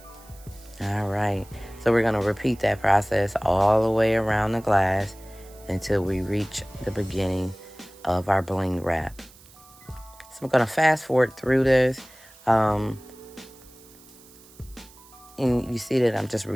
All right. So we're going to repeat that process all the way around the glass until we reach the beginning of our bling wrap. So I'm going to fast forward through this. And you see that I'm just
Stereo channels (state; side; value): noise; right; hiss, 24 dB below the sound